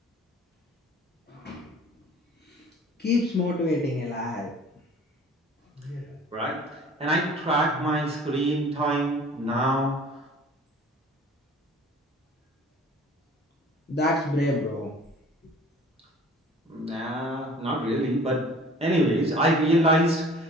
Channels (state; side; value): normal; both; correlation 0.48